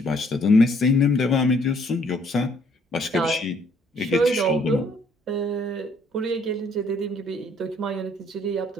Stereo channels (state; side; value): normal; both; correlation 0.64